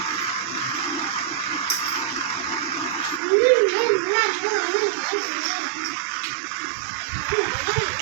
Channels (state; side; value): drops out; left; at 3.2 s